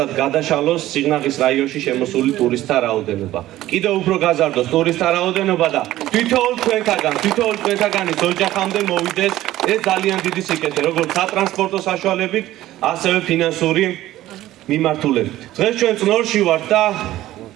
გადაშალოს სიღნაღის რაიონში შემოსული ტურისტთა რაოდენობა. კიდევ უფრო გაზარდოს ტურისტთა რაოდენობა და თითოეულ თქვენთაგანის ოჯახამდე მოვიდეს ეს ძალიან დიდი სიკეთე, როგორც სატრანსპორტო საშუალებით, ასევე ფინანსური მიმართულებით. დღეს ჩვენ წნორში ვართ და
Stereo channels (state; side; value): quieter; left; 14.9 dB